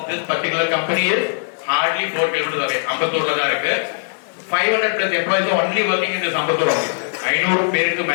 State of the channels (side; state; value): right; silent; 63 dB below the other